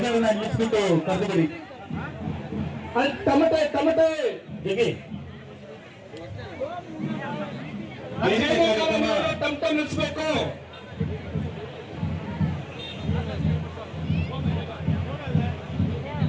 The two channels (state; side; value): identical; both; correlation 1.00